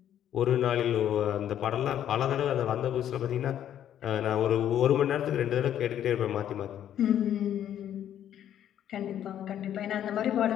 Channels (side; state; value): right; quieter; 10.6 dB